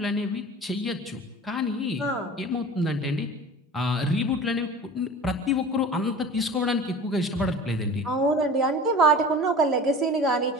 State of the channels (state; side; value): normal; both; correlation 0.38